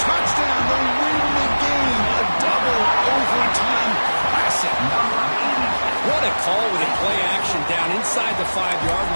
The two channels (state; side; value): inverted; both; correlation -1.00